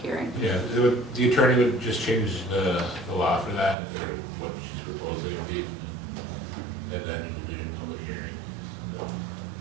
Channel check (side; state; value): left; drops out; at 3.8 s